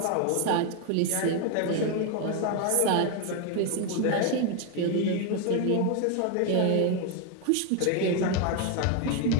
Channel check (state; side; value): different; both; correlation 0.01